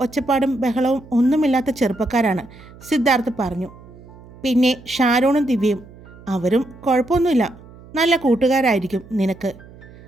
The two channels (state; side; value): noise; right; hum, 21 dB below the sound